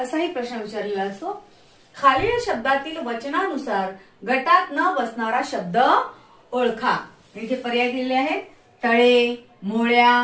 प्रश्न विचारलेला असतो, खालील शब्दातील वचनानुसार गटात न बसणारा शब्द ओळखा। इथे पर्याय दिलेले आहेत, तळे,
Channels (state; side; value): identical; both; correlation 1.00